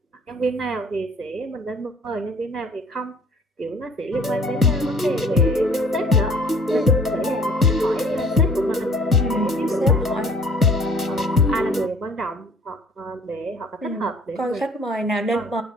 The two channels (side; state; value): both; normal; correlation 0.54